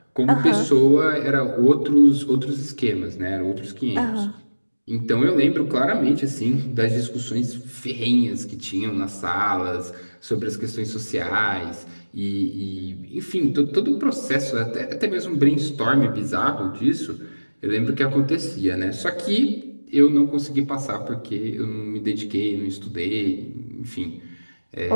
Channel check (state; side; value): inverted; both; correlation -1.00